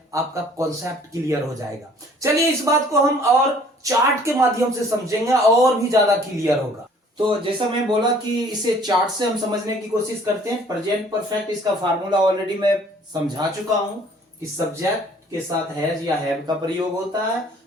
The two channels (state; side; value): normal; both; correlation 0.55